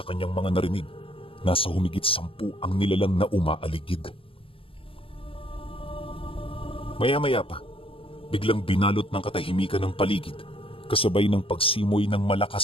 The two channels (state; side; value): late; right; 0.26 ms